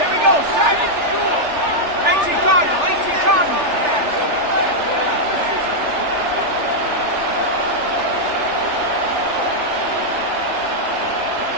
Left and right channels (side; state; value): left; late; 3.4 ms